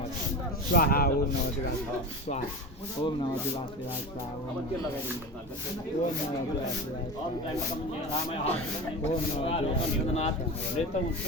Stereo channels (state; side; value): normal; both; correlation 0.27